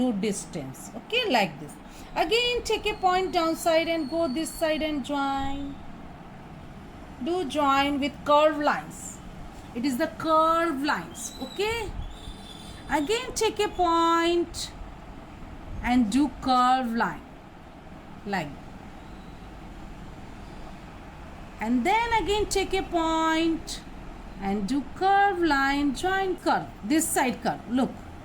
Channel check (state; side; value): identical; both; correlation 1.00